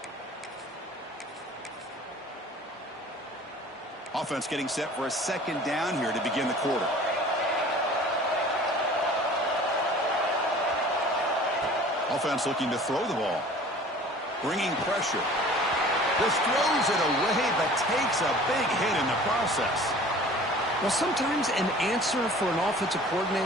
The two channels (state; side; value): normal; both; correlation 0.46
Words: Offense getting set for a 2nd down here to begin the quarter. Offense looking to throw the ball. Bringing pressure. Just throws it away, but takes a big hit in the process. Well, sometimes an answer for an offensive